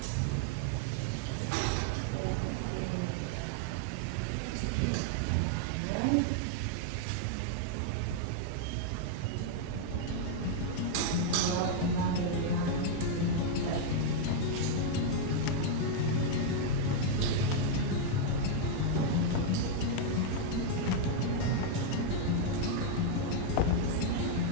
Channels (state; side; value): different; both; correlation 0.00